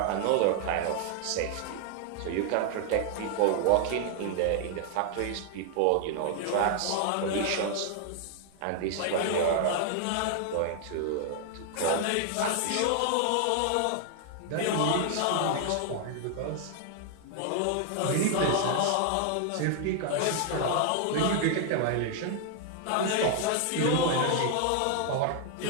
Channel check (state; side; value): different; both; correlation 0.00